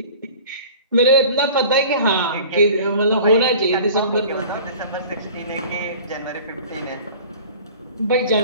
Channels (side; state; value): both; inverted; correlation -0.43